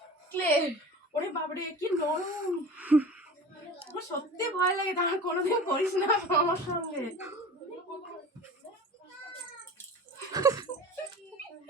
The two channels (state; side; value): normal; both; correlation 0.37